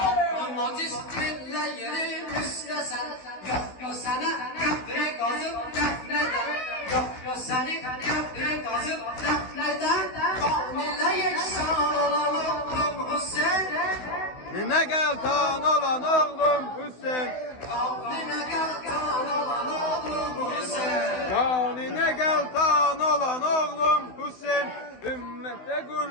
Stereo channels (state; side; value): late; right; 16 ms